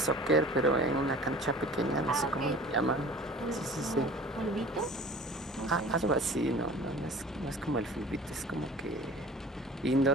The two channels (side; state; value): both; normal; correlation 0.44